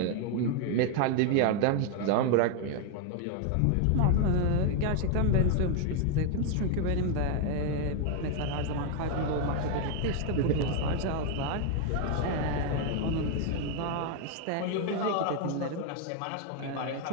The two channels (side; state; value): both; different; correlation 0.01